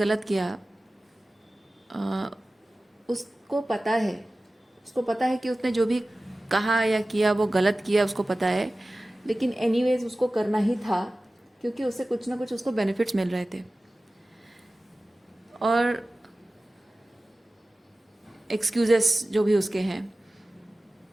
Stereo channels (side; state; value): both; normal; correlation 0.96